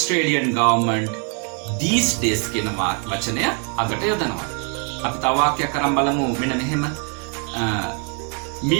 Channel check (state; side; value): quieter; left; 39.9 dB